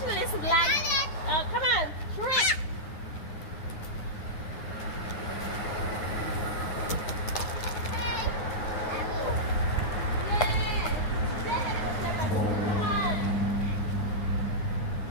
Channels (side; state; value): right; late; 9.5 ms